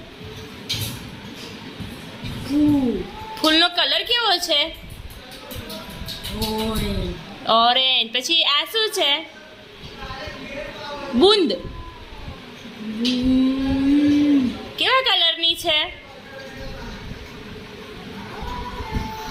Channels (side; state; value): both; identical; correlation 1.00